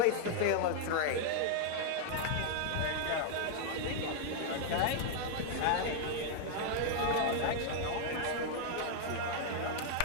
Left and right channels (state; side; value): different; both; correlation 0.00